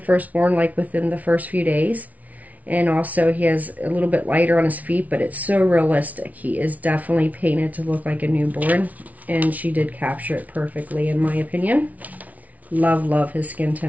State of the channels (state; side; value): late; left; 0.071 ms